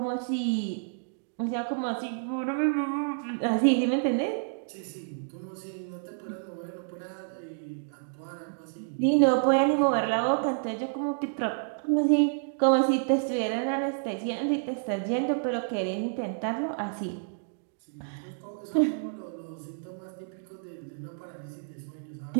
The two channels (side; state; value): left; silent; digital silence